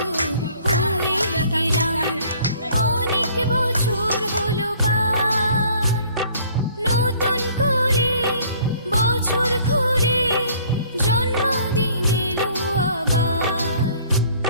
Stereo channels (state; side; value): inverted; both; correlation -0.56